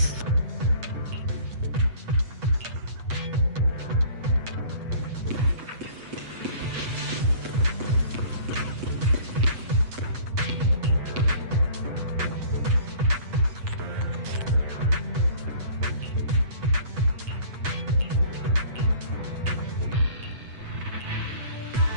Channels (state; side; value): late; left; 8.1 ms